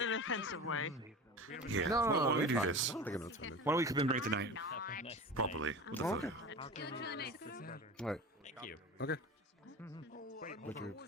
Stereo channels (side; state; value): both; normal; correlation 0.32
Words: in an offensive way. Yeah. No, Why don't we it's do fine. this? I don't think I'm offended. Why don't we commemorate the night properly with a Okay. photo? Alright. Thank you. Okay. Would you